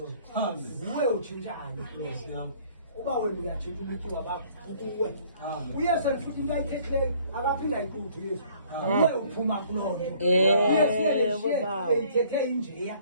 nguwe utshintshayo uba wena uyatshintsha ubutyiwa bakho ukuwe uyesu futhi into ayithethileyo akaphinde ayiquthe uyesu uwe uphuma kuloo nto eyithethe injeya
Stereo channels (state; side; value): inverted; both; correlation -0.57